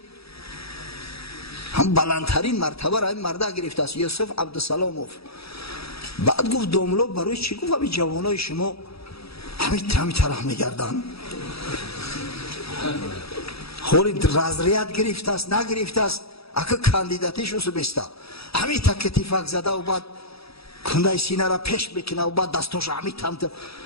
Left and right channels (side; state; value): right; late; 0.77 ms